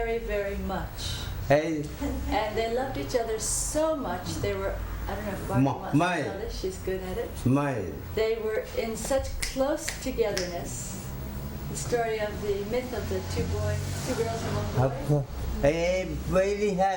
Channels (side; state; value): both; identical; correlation 1.00